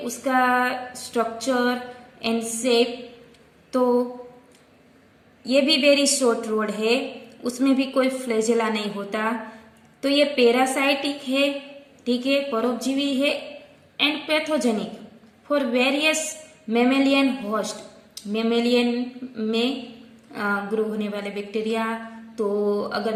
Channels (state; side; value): identical; both; correlation 1.00